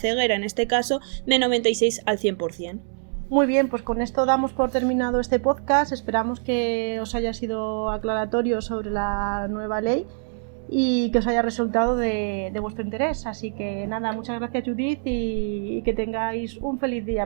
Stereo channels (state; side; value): silent; left; digital silence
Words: en este caso, de 96 al 100%. Muy bien, pues con esto damos por terminado este podcast. Esperamos que os haya sido aclaratorio sobre la nueva ley y que os haya resultado de vuestro interés. Así que nada, muchas gracias Judith y que tengáis un feliz